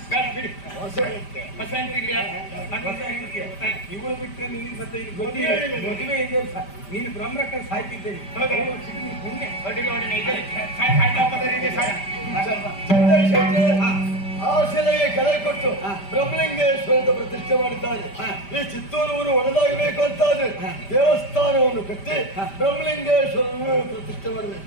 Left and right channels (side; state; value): right; late; 5.1 ms